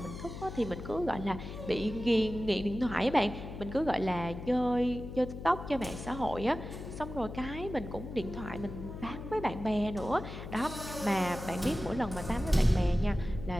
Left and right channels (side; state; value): left; noise; hum, 9 dB below the sound